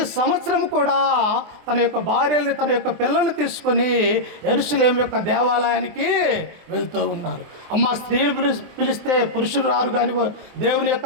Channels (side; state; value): left; late; 24 ms